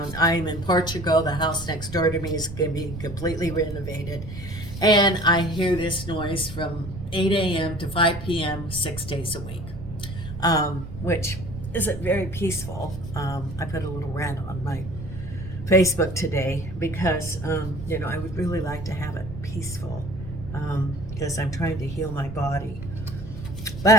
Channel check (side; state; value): right; noise; rumble, 10 dB below the sound